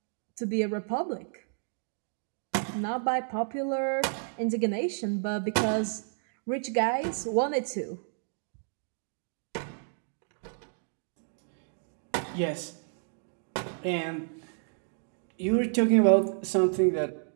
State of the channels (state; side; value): silent; left; digital silence